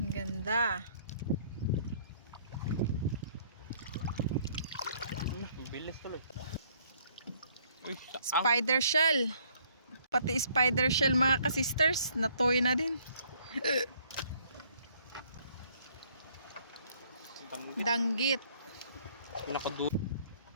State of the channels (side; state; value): both; inverted; correlation -0.63